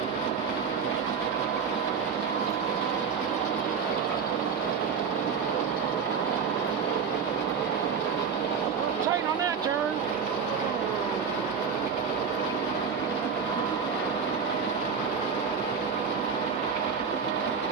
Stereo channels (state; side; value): quieter; left; 6.2 dB